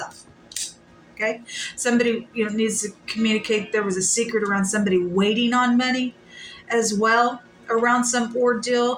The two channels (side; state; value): both; identical; correlation 1.00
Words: Okay. Somebody, needs to communicate. There was a secret around somebody waiting on money as well around some